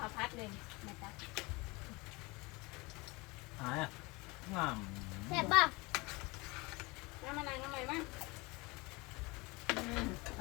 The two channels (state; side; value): quieter; right; 25.1 dB